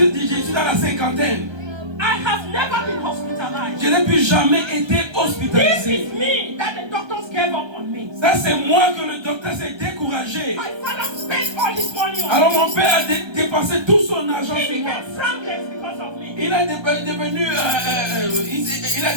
suis dans la cinquantaine. I have never been hospitalized. Je n'ai plus jamais été This hospitalisé. is me that the doctors gave up on me. Ça, c'est moi que le docteur s'est découragé. My father spent all his money on Alors me. mon père a dépensé tout son argent He sur moi. became frankless because of me. Il a devenu, il a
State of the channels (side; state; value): left; late; 1.3 ms